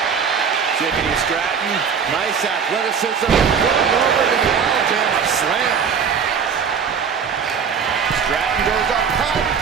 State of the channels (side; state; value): left; quieter; 6.5 dB